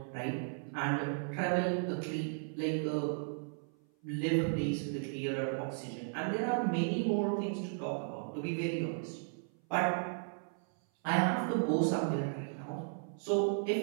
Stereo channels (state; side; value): silent; left; 54 dB below the other